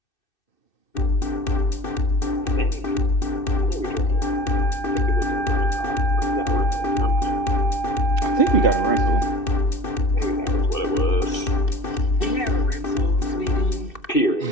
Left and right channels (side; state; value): right; late; 2.6 ms